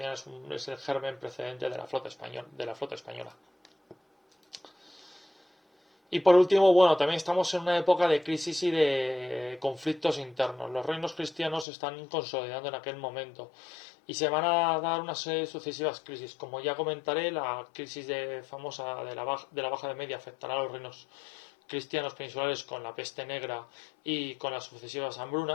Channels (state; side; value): drops out; right; at 11.7 s